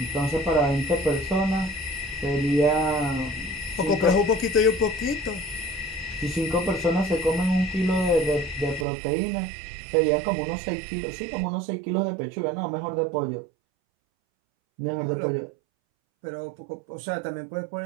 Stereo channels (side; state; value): left; drops out; at 8.8 s